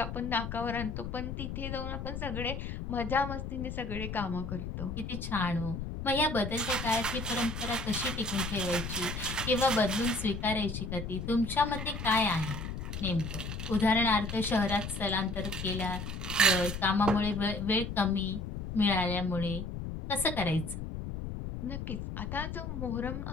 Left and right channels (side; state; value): left; noise; rumble, 6 dB below the sound